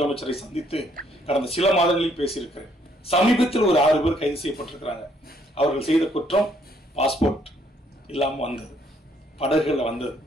சந்தித்து கடந்த சில மாதங்களில் பேசியிருக்கிறேன். சமீபத்தில் ஒரு 6 பேர் கைது செய்யப்பட்டிருக்கிறாங்க. அவர்கள் செய்த குற்றம் பாஸ்போர்ட் இல்லாம வந்தது, படகுல வந்தது.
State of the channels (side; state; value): both; normal; correlation 0.68